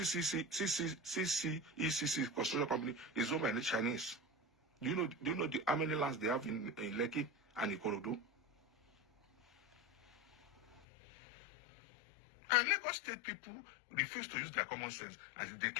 construction company is owned by the Chinese. Do you know how many lands they have in Lekki and Ikorodu? And Lagos State people refuse to use their common sense as they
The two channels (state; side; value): drops out; right; at 10.8 s